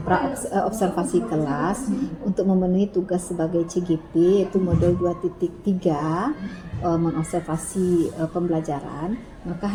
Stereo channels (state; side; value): identical; both; correlation 1.00